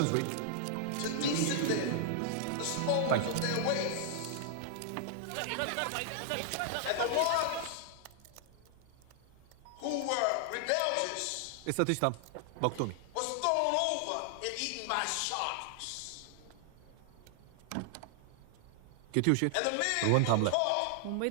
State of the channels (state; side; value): different; both; correlation 0.00